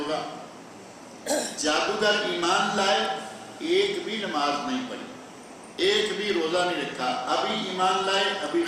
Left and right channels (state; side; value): identical; both; correlation 1.00